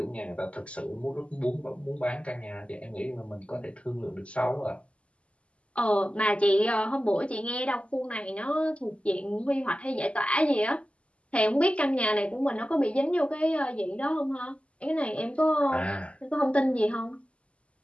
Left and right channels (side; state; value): right; late; 0.059 ms